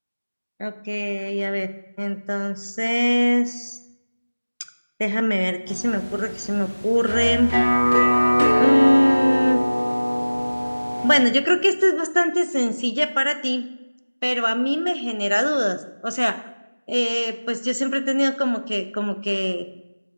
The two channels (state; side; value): inverted; both; correlation -1.00